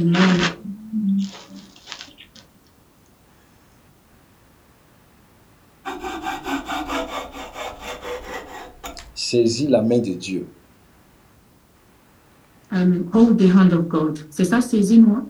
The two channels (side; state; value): both; identical; correlation 1.00